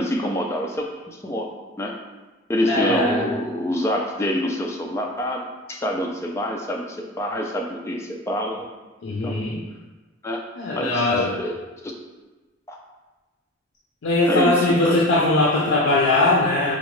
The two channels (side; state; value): both; normal; correlation 0.28